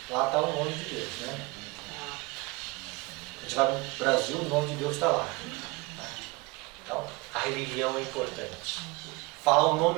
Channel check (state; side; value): quieter; left; 24.6 dB